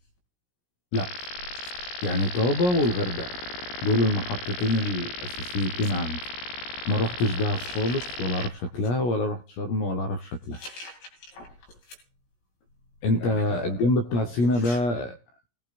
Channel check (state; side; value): late; right; 17 ms